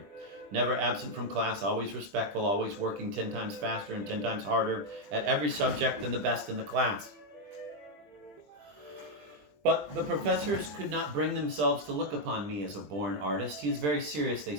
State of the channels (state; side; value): late; left; 20 ms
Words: Never absent from class, always respectful, always working 10 times faster and 10 times harder at every subject than the best in the class. But the professors could not bring themselves to look upon me as a born artist. He is very serious, they